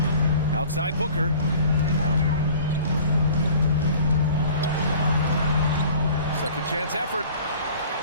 Outside Booker. Second chance effort.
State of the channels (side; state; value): both; inverted; correlation -0.46